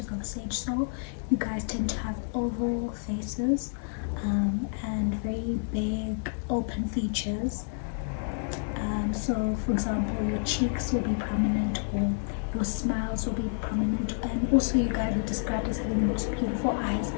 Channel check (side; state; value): right; silent; digital silence